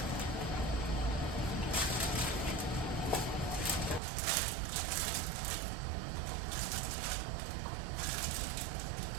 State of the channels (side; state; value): left; drops out; at 4.0 s